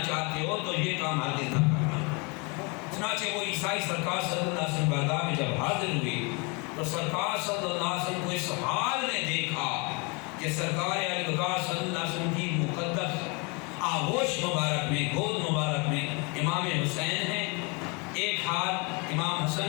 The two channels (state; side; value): quieter; right; 30.8 dB